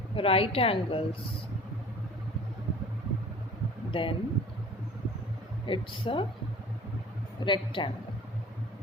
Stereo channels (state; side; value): normal; both; correlation 0.46